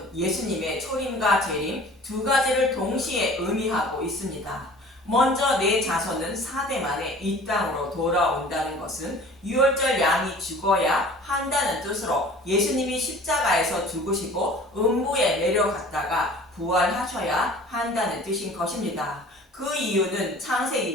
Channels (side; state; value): both; normal; correlation 0.46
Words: 예수님의 초림과 재림 두 가지를 동시에 의미하고 있습니다. 먼저 내 자손은 4대 만에 이 땅으로 돌아온다는 것은 유월절 양이 죽어야 한다는 뜻으로 예수님이 십자가에서 죽으시고 음부에 내려갔다가 부활하셔야 한다는 뜻인 것입니다. 그 이유는